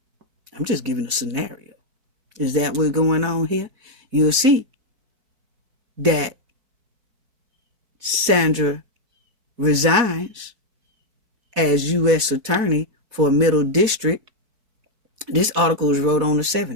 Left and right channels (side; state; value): left; late; 4.5 ms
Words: just giving a scenario. Is that what's going on here? You'll see that Sandra resigns as U.S. Attorney for Middle District. This article was wrote on the